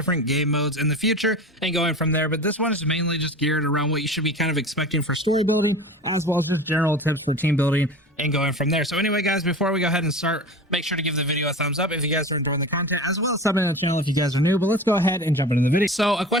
game modes in the future and going from there, but this one is mainly just geared around what you should be kind of expecting for story building, as well as just general tips for team building and going from there. So anyway, guys, before we go ahead and start, make sure to give the video a thumbs up if you guys are enjoying the content, as well as subbing to the channel if you guys are new. But let's go ahead and jump into the video. So a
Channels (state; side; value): normal; both; correlation 0.34